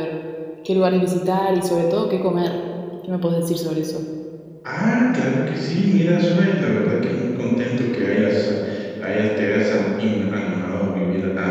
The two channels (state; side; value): identical; both; correlation 1.00